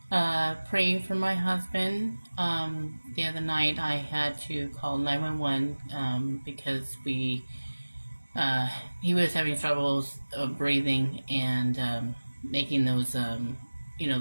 praying for my husband. The other night, I had to call 911 because uh, he was having troubles breathing and making those,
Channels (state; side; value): inverted; both; correlation -1.00